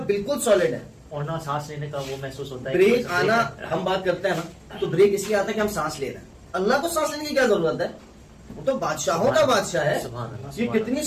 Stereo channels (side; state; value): both; identical; correlation 1.00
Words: بالکل سالڈ ہے. اور نہ سانس لینے کا وہ محسوس ہوتا ہے, بریک آنا, ہم بات کرتے ہیں نا تو بریک اس لیے آتا ہے کہ ہم سانس لے رہے ہیں. اللہ کو سانس لینے کی کیا ضرورت ہے, وہ تو بادشاہوں کا بادشاہ ہے. یہ کتنی